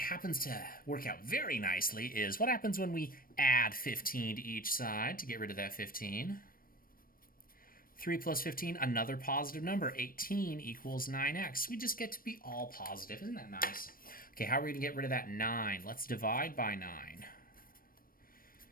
to work out very nicely is what happens when we add 15 to each side to get rid of that 15. 3 plus 15, another positive number. 18 equals 9x. We just get to be all positive. Isn't that nice? Okay, how are we going to get rid of that 9? Let's divide by 9.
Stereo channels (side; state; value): right; late; 0.41 ms